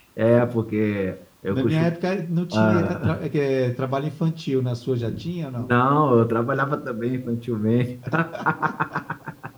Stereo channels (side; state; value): both; identical; correlation 1.00